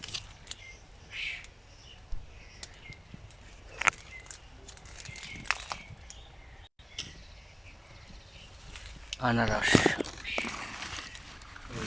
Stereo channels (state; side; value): identical; both; correlation 1.00